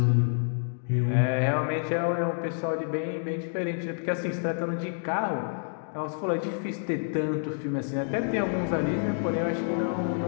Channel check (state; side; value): silent; right; digital silence